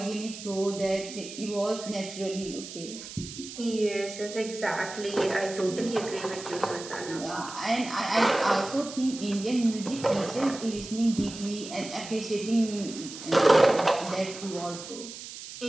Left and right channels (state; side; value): noise; right; hiss, 12 dB below the sound